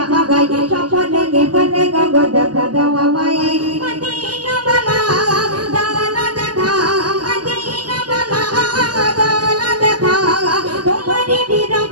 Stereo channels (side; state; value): left; late; 0.69 ms